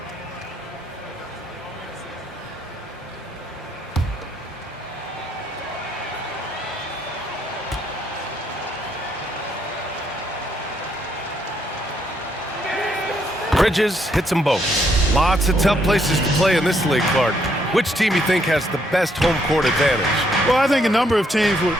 Bridges hits them both. Lots of tough places to play in this league, Clark. Which team you think has the best home court advantage? Well, I think a number of teams would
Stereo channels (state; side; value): normal; both; correlation 0.73